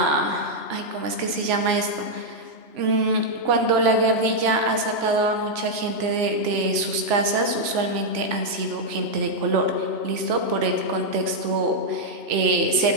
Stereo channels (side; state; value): left; late; 3.5 ms